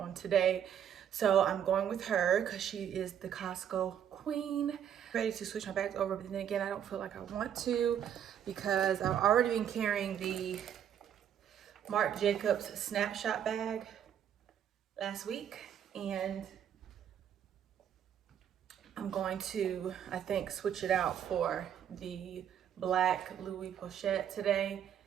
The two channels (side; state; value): left; quieter; 9.3 dB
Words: today. So I'm going with her because she is the Costco queen. Ready to switch my bags over, but then again, I don't feel like I want to because I've already been carrying the Marc Jacobs snapshot bag last week, and I'm going to, I think, switch it out for the black Louis pochette today